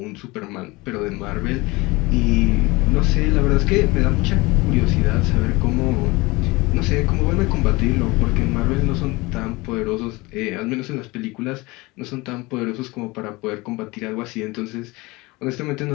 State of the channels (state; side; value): quieter; right; 23.0 dB